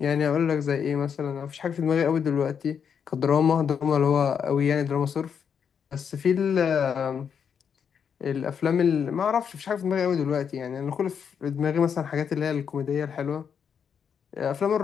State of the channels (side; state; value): right; quieter; 7.3 dB